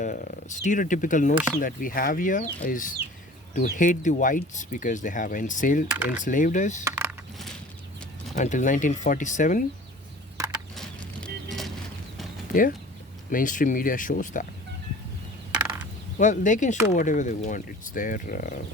stereotypical notion that we have here is to hate the whites because they have enslaved us until 1947. Yeah, mainstream media shows that. Well, they can show whatever they want. It's their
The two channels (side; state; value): both; normal; correlation 0.44